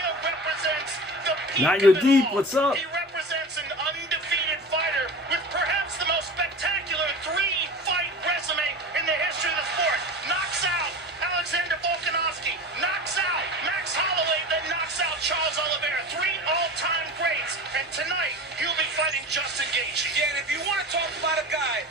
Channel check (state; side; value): normal; both; correlation 0.33